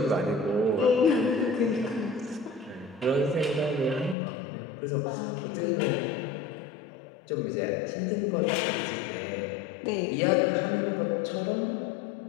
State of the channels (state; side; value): drops out; right; at 4.2 s